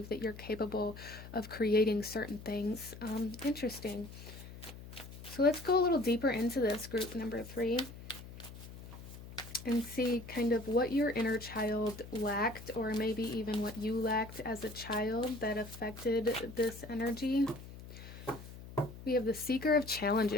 that you're capable of creating certain things. Interesting. So let's go a little deeper into this, group number 3, and see kind of what your inner child lacked, or maybe even what you lacked as a child that affected this energy. We have the Seeker of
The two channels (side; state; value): left; noise; hum, 14 dB below the sound